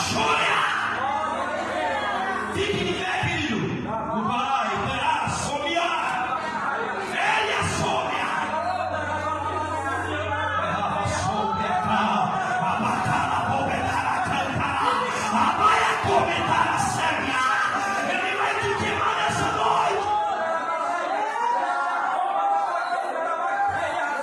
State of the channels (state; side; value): identical; both; correlation 1.00